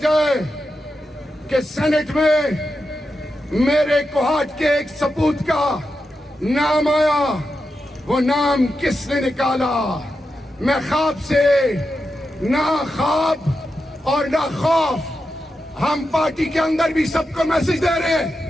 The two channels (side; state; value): both; normal; correlation 0.88